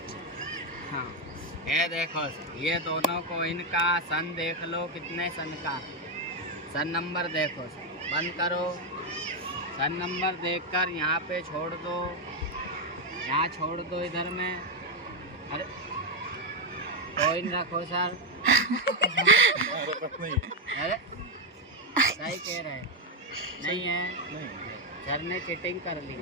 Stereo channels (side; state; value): both; normal; correlation 0.04